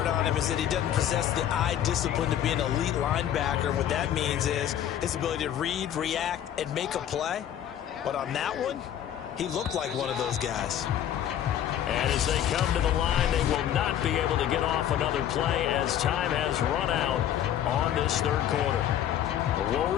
on him is that he doesn't possess the eye discipline to be an elite linebacker. What that means is his ability to read, react, and make a play. But on that one, he looked like one of those guys. And as they come to the line, they will not be able to get off another play as time has run out on this third quarter. We'll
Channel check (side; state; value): right; quieter; 10.6 dB